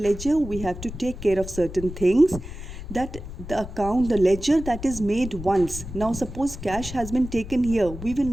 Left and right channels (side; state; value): left; noise; rumble, 10 dB below the sound